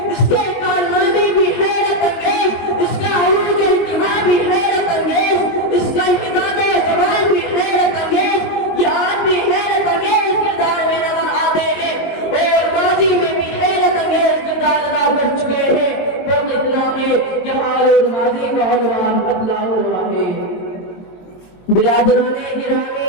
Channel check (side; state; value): right; late; 22 ms